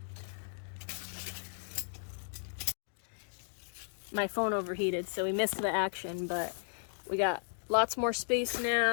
My phone overheated, so we missed the action, but we got lots more space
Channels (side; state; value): right; silent; digital silence